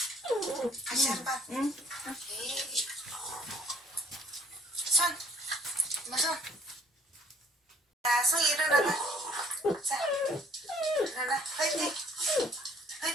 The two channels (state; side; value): normal; both; correlation 0.59